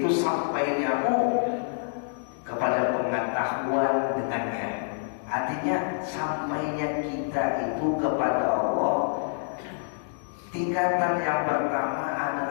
sampainya kepada pengetahuan dengannya. Artinya sampainya kita itu kepada Allah. Tingkatan yang pertama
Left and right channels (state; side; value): silent; right; digital silence